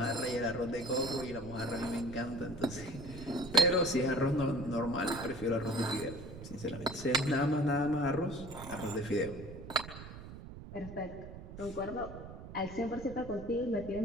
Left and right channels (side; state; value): right; noise; rumble, 12 dB below the sound